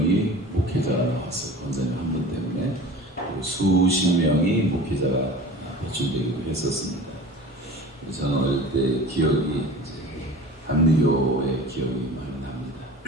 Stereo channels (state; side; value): normal; both; correlation 0.39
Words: 목회자가 나왔어요. 권사님 한 분 때문에. 그리고 수십 명이 목회자가 배출되기도 했었습니다. 그래서 저는 어릴 때 기억이 이제 감리교의 기억이 많이 납니다.